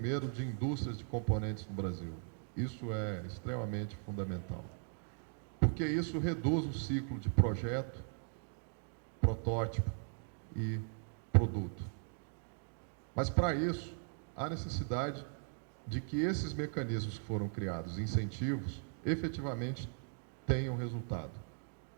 de indústrias de componentes no Brasil. Isso é extremamente fundamental, porque isso reduz o ciclo de projeto, protótipo e produto. Mas, para isso, há necessidade de que esses mecanismos que foram criados, incentivos, efetivamente tenham resultado.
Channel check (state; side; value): silent; left; 52 dB below the other